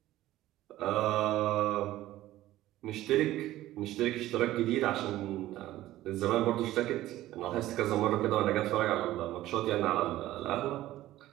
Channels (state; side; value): quieter; left; 15.2 dB